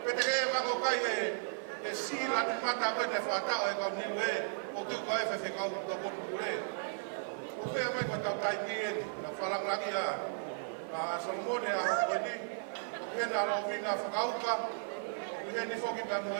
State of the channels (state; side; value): silent; left; 54 dB below the other